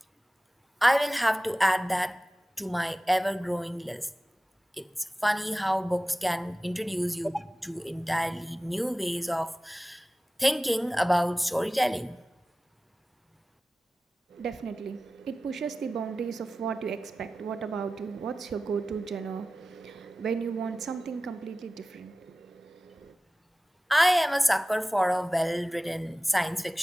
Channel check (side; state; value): both; normal; correlation 0.96